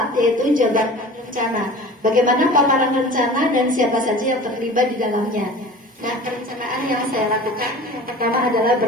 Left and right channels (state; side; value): normal; both; correlation 0.40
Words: yaitu jabarkan rencana. Bagaimana paparan rencana dan siapa saja yang terlibat di dalamnya. Nah, perencanaan yang saya lakukan yang pertama adalah